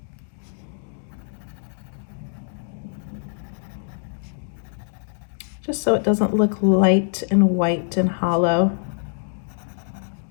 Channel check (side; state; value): right; silent; digital silence